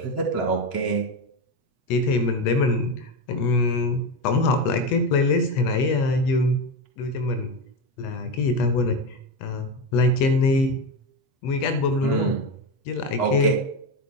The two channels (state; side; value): late; right; 8.2 ms